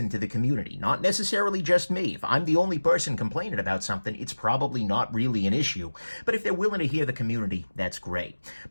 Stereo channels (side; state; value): both; inverted; correlation -1.00